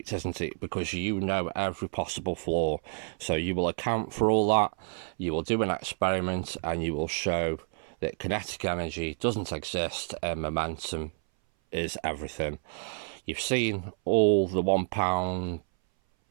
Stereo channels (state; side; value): silent; left; 58 dB below the other